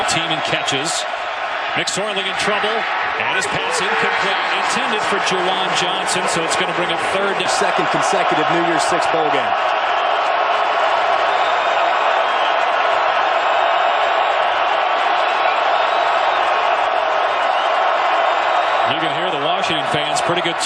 Team in catches. McSorley in trouble, and his pass incomplete. Intended for Juwan Johnson, so it's going to bring a second consecutive New Year's Six bowl game. You can hear the Washington fans. Pretty good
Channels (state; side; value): identical; both; correlation 1.00